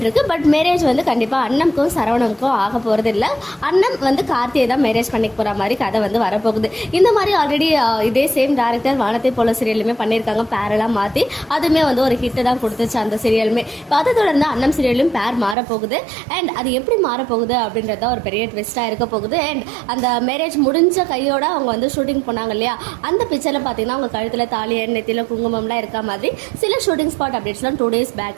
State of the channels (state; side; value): drops out; left; at 15.6 s